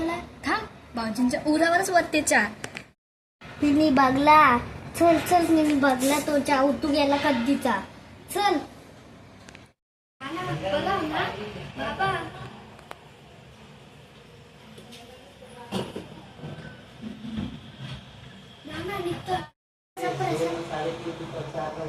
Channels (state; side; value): identical; both; correlation 1.00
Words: थांब भाऊजींच्या उरावरच वरते चहा. तिने बघला. चल चल मी बघला तो चहा उतू गेला कधीचा. चल.